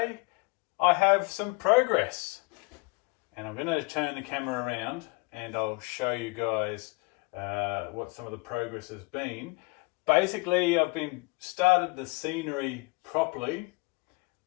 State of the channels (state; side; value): quieter; right; 28.7 dB